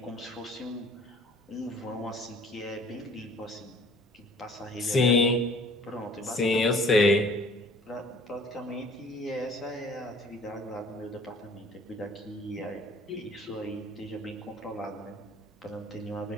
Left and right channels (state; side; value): normal; both; correlation 0.52